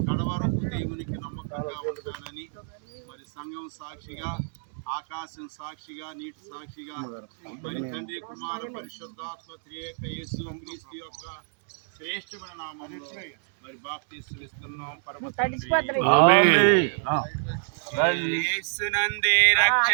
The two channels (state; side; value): silent; left; digital silence